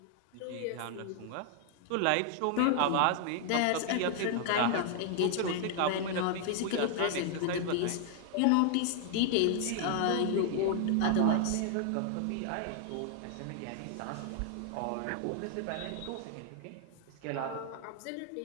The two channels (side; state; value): both; different; correlation 0.00